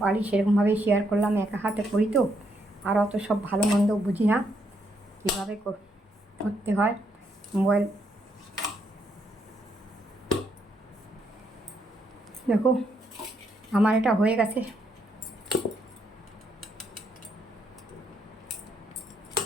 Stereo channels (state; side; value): normal; both; correlation 0.75